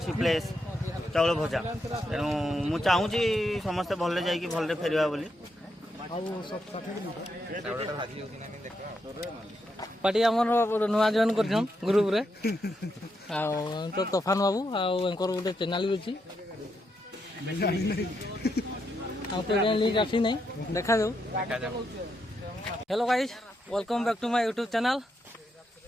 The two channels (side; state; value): both; normal; correlation 0.81